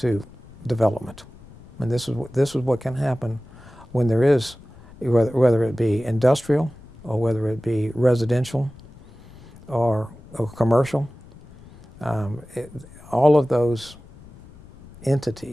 development. And this is what can happen when there is, whether it be industrial or whether it be residential or commercial. All of those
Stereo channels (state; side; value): noise; left; rumble, 22 dB below the sound